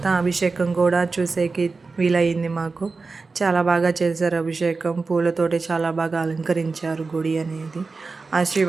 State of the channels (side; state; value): left; quieter; 4.1 dB